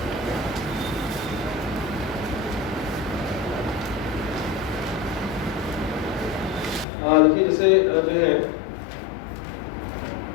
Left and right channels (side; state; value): right; drops out; at 6.9 s